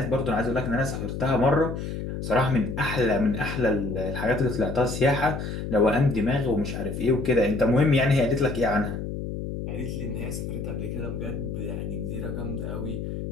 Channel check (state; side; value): noise; left; hum, 5 dB below the sound